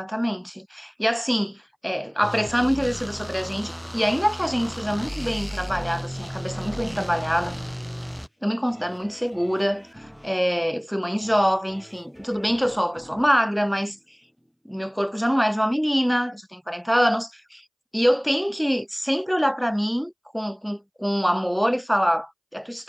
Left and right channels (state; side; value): identical; both; correlation 1.00